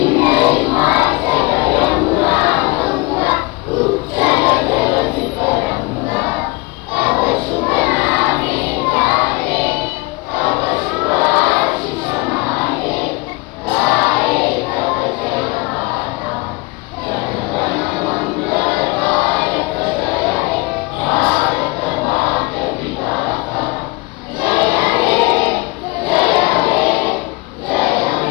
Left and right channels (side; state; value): right; quieter; 24.9 dB